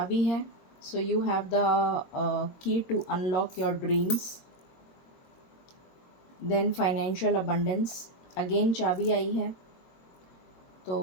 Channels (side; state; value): right; late; 22 ms